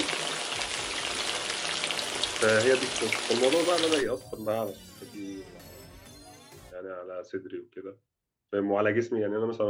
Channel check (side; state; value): both; identical; correlation 1.00